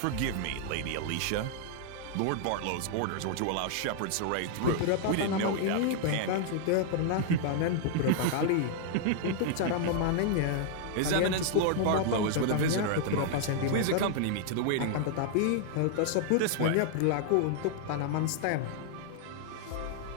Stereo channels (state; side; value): different; both; correlation 0.00